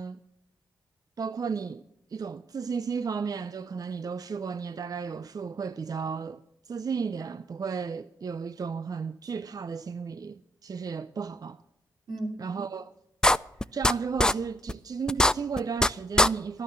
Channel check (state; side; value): normal; both; correlation 0.66